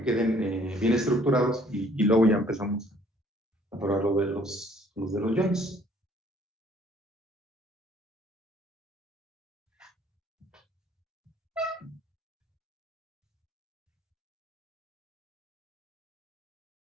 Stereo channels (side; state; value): both; normal; correlation 0.59